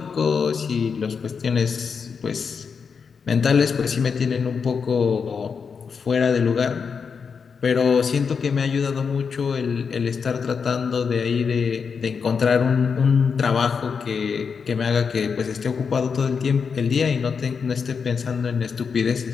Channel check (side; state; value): right; quieter; 5.9 dB